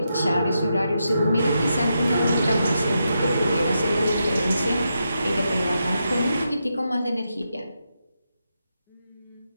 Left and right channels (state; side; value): inverted; both; correlation -0.85